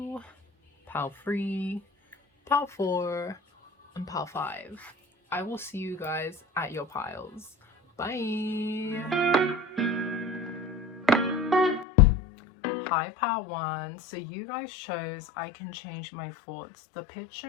pile 3, pile 4, and pile 5. I will see you guys at your piles. Bye! Hi pile 1. So you guys chose I can change my thoughts. The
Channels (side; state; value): right; drops out; at 11.9 s